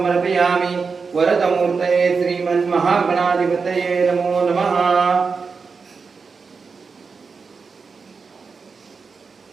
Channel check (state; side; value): quieter; left; 5.0 dB